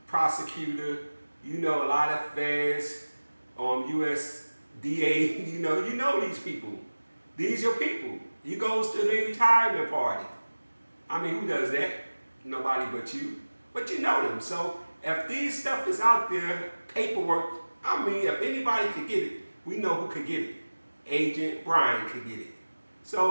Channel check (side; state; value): both; inverted; correlation -1.00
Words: prosecutor, you know a lot of feds, USDA, you know these people. These your people. You goes to their retirement party. I mean, who does that? Nobody but you. But you know them. So if these stuff is out there, paperwork, I mean, if anybody could get it, we know who could get it. Agent Brian could get it.